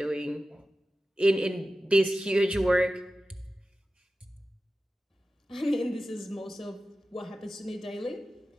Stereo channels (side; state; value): both; normal; correlation 0.94